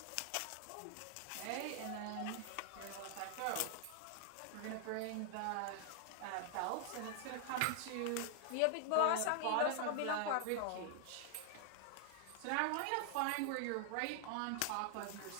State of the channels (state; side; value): different; both; correlation 0.00